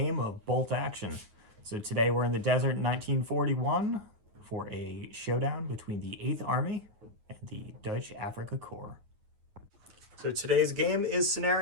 of Bolt Action. So today we're in the desert in 1941 for a showdown between the 8th Army and the Dutch Afrika Korps. So today's game is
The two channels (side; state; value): left; late; 9.4 ms